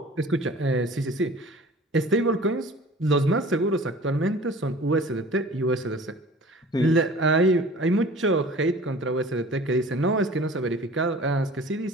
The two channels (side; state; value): both; normal; correlation 0.44